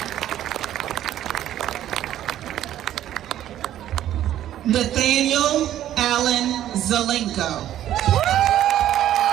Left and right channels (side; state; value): left; quieter; 12.1 dB